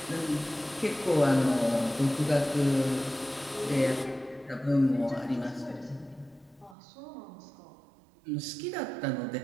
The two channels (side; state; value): left; drops out; at 6.8 s